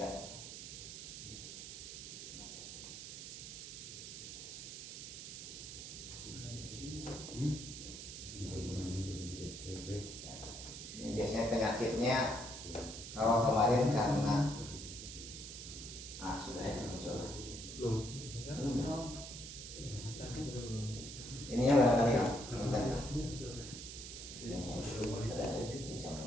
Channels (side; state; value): right; noise; hiss, 9 dB below the sound